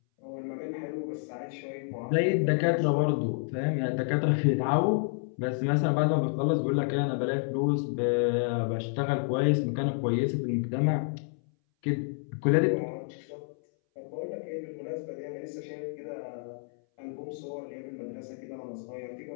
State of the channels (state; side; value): silent; right; 58 dB below the other